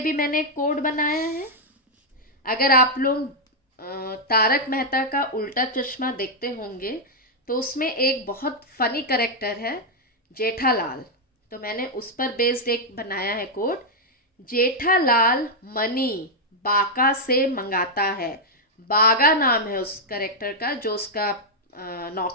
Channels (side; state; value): both; normal; correlation -0.03